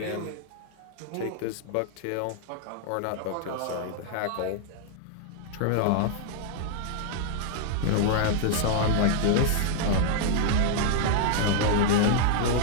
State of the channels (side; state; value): both; different; correlation 0.00